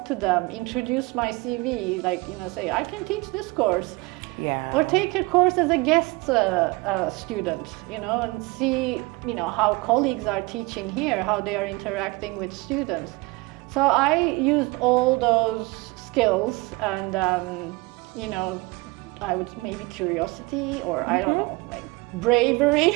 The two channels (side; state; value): left; quieter; 24.3 dB